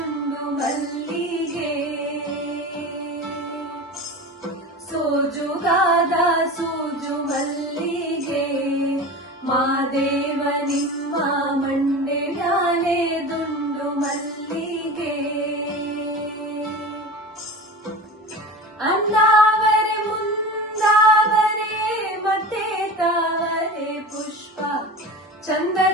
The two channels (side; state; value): both; normal; correlation 0.31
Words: ಮಲ್ಲಿಗೆ ಸೋಜುಗಾದ ಸೂಜು ಮಲ್ಲಿಗೆ ಮಾದೇವ ನಿಮ್ಮ ಮಂಡೆ ಮ್ಯಾಲೆ ದುಂಡು ಮಲ್ಲಿಗೆ ಅನ್ನಾವರೆ ಮುಂದಾವರೆ ಮತ್ತೆ ತಾವರೆ ಪುಷ್ಪ